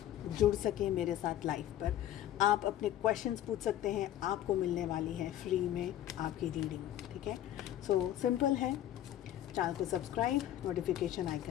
जुड़ सकें मेरे साथ लाइव पर। आप अपने क्वेश्चंस पूछ सकते हैं, आपको मिलने वाली है फ्री में आपकी रीडिंग, ठीक है। सो सिंपल है, चैनल को सब्सक्राइब, नोटिफिकेशन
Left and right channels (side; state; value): right; quieter; 12.2 dB